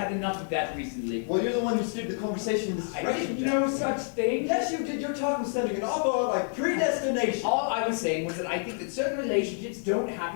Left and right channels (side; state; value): right; silent; 59 dB below the other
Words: enough of that recently. Well, you're the one who steered the conversation in this I direction, did Jack. no such thing. Yes, you did. Your talk was sounding an awful lot like predestination. All I was saying was that I think that certain relationships don't